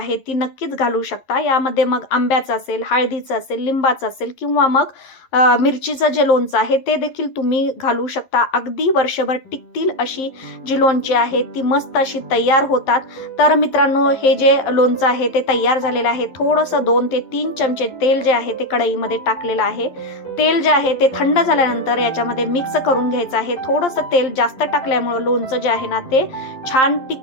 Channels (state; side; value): late; right; 11 ms